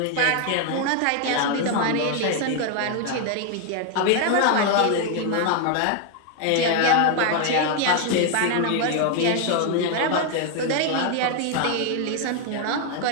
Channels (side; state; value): both; different; correlation 0.00